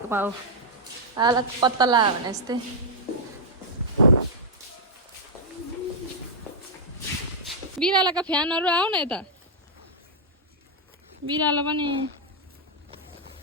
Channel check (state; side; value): normal; both; correlation -0.06